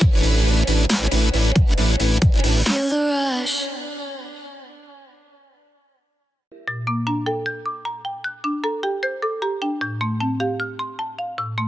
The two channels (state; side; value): normal; both; correlation 0.91